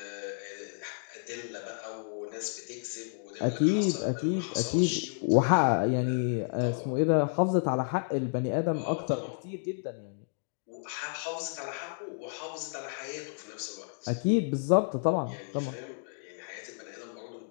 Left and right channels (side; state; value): right; silent; digital silence